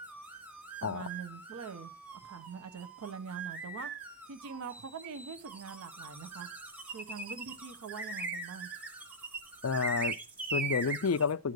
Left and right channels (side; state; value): both; normal; correlation -0.09